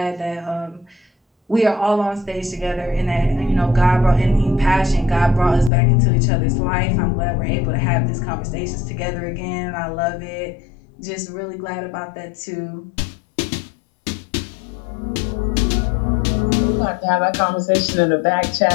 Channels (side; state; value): right; drops out; at 5.7 s